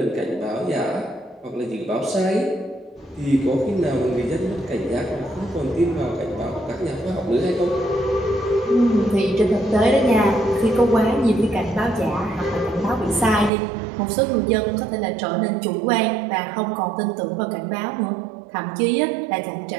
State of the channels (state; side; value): drops out; left; at 13.5 s